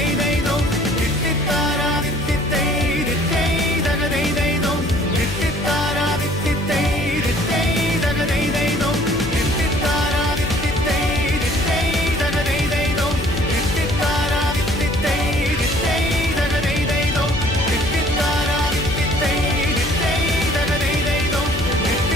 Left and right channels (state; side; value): noise; left; hum, 7 dB below the sound